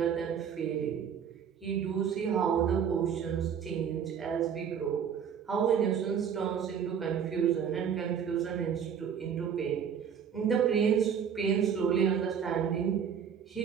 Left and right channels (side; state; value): left; quieter; 7.7 dB